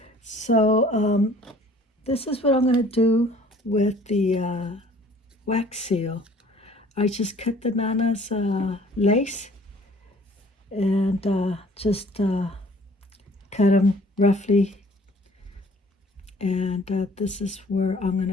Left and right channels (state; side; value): normal; both; correlation 0.54